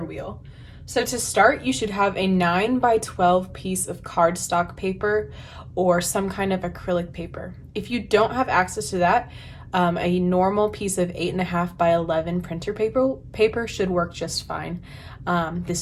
wheel. So to start, you should have a 9 by 12 piece of cardstock paper or some kind of acrylic paper. If you don't have access to that, a normal piece of 8.5 by 11 printer paper should work just fine.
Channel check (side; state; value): both; identical; correlation 1.00